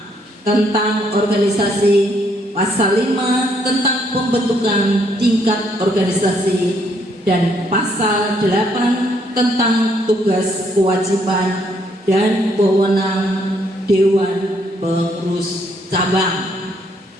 tentang organisasi, pasal 5 tentang pembentukan tingkat organisasi, dan pasal 8 tentang tugas kewajiban dan wewenang Dewan Pengurus Cabang.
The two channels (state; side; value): normal; both; correlation 0.70